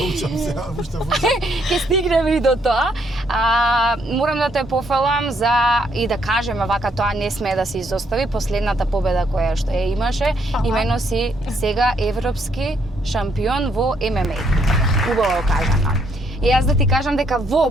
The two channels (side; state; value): both; normal; correlation 0.72